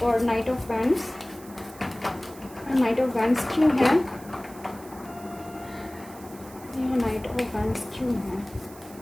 night of wands. Night of wands क्यों है, यहाँ नाइट ऑफ वैंड्स क्यों है,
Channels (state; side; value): noise; right; hiss, 20 dB below the sound